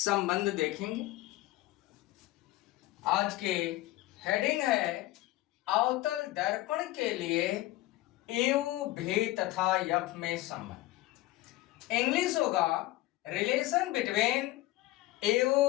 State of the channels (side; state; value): right; quieter; 17.5 dB